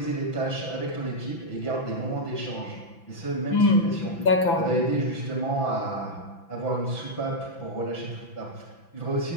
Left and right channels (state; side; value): late; right; 6.0 ms